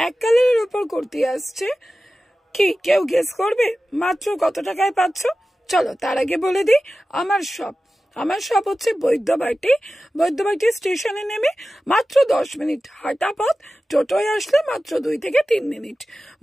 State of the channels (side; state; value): both; normal; correlation 0.95